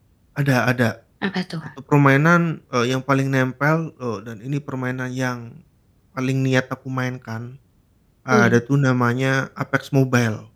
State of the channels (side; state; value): both; identical; correlation 1.00